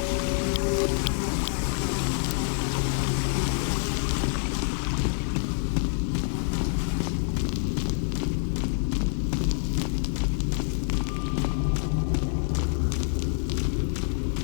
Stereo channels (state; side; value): silent; right; digital silence